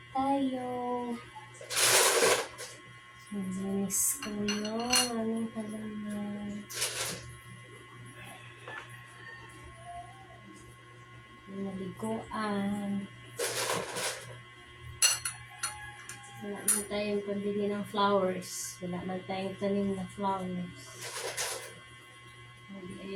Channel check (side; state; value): both; identical; correlation 1.00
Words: tayo. Linis ko yung aming halaman. Naliguan. Wala man tayong pambili ng flowers. Wala man tayong tanim na flowers.